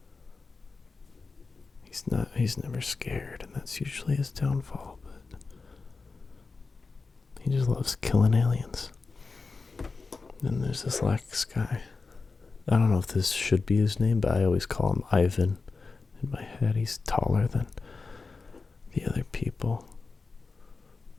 He's never scared, and that's usually his downfall, but he just loves killing aliens. Then there's this last guy. I don't know if this should be his name, but I always call him Ivan. In my head, he's taller than the other people.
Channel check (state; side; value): quieter; right; 4.2 dB